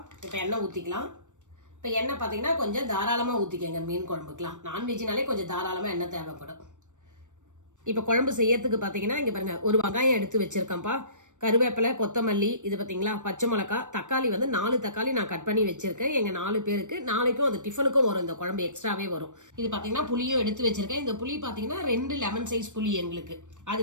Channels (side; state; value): left; late; 0.85 ms